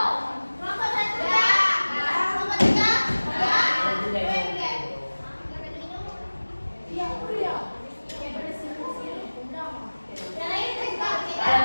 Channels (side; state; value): both; inverted; correlation -1.00